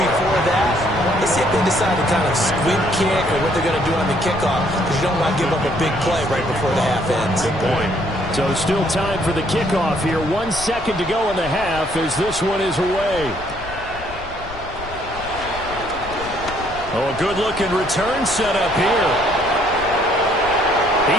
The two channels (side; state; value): left; noise; rumble, 14 dB below the sound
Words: that, let's see if they decide to kind of squib kick or what they're going to do on the kickoff, because you don't want to give up a big play right before the half ends. Good point. So still time for the kickoff here. 1 second to go in the half as this one is away. Oh, a good-looking return set up here.